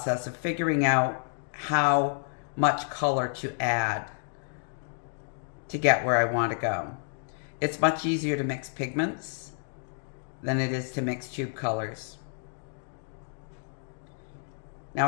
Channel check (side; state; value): right; silent; digital silence